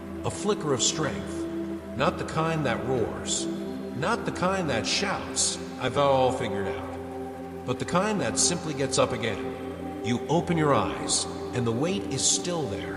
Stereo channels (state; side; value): identical; both; correlation 1.00